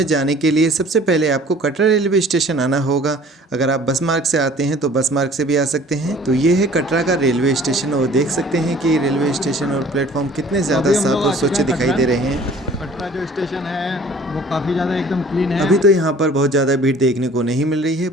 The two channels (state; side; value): normal; both; correlation 0.50